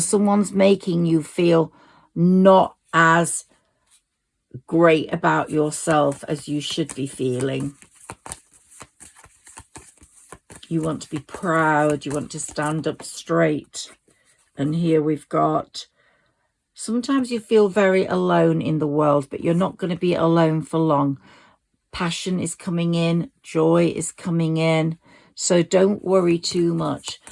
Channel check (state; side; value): identical; both; correlation 1.00